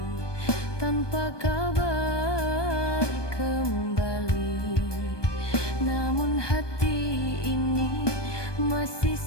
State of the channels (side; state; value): right; late; 1.2 ms